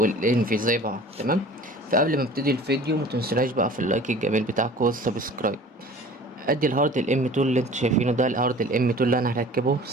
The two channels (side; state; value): both; normal; correlation 0.44